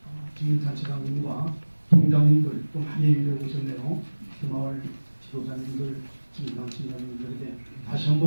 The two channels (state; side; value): inverted; both; correlation -1.00